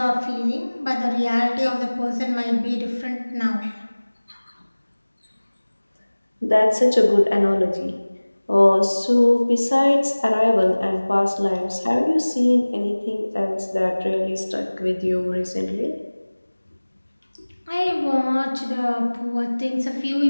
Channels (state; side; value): inverted; both; correlation -1.00